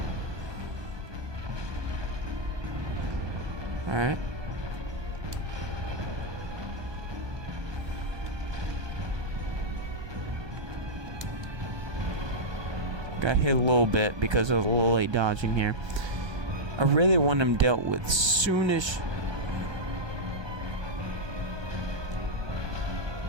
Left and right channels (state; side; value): late; left; 1.3 ms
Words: Alright. Got hit a little bit because I was a little late dodging here. I really want him dealt with soonish.